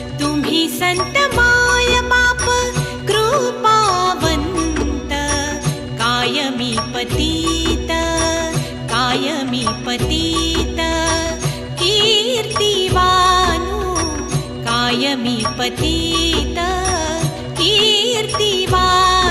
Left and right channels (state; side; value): identical; both; correlation 1.00